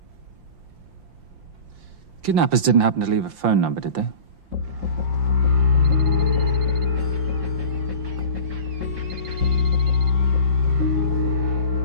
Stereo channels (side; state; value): left; late; 5.8 ms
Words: Kidnappers didn't happen to leave a phone number, did they?